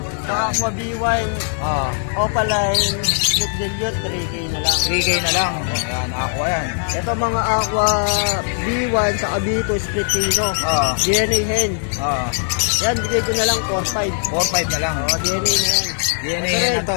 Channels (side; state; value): right; silent; 60 dB below the other